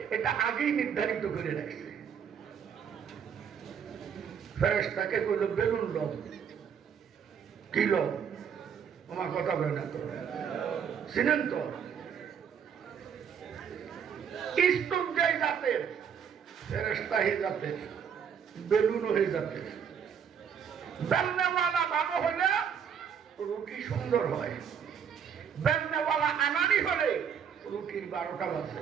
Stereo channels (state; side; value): quieter; left; 7.6 dB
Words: এটা আগেই নির্ধারিত করে রাখছে। ফেরেশতাকে কইল বেলুন লোক কি লোক, আমার কথা বলে না তো, চিনেন তো স্তূপ যাই জাতের, ফেরেশতা হয়ে জাতের, বেলুন হয়ে জাতের। বেলনেওয়ালা ভালো হলে রুটি সুন্দর হয়, বেলনেওয়ালা আনানি হলে রুটির 12টা বাজে।